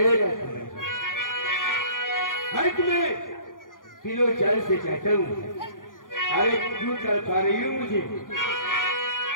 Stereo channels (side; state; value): right; late; 0.89 ms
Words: समय हर तुम्हें किलो चाल से चाहता हूँ। अरे क्यों कर पा रही हूँ मुझे?